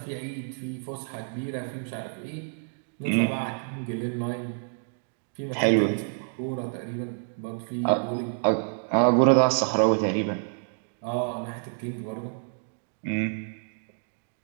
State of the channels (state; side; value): silent; left; digital silence